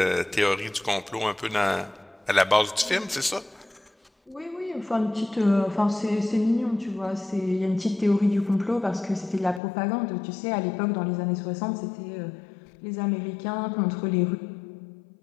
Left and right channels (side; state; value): right; drops out; at 9.6 s